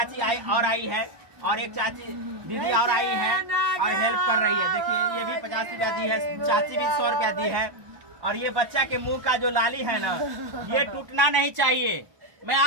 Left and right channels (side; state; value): left; late; 1.2 ms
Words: आई है और एक चाची दीदी और आई है और हेल्प कर रही है। देखिए ये भी 50 रुपया दी है, चाची भी 100 रुपया दी है। और ये बच्चा के मुंह का जो लाली है ना, ये टूटना नहीं चाहिए। मैं